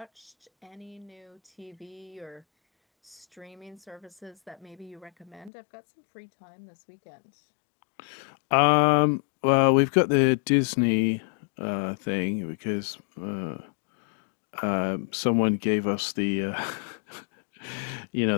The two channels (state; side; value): drops out; right; at 5.5 s